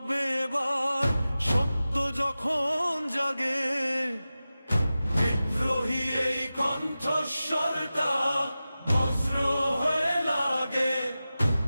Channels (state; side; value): inverted; both; correlation -0.95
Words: এবার, সত্য যখন জাগে। বিদ্রোহী এই কণ্ঠস্বরটা বজ্র হয়ে লাগে।